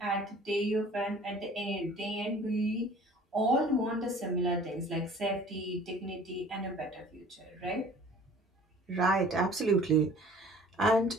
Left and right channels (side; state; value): both; normal; correlation 0.49